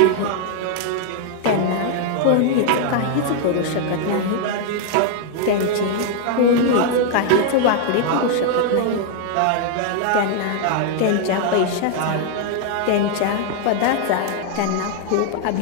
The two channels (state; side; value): different; both; correlation 0.00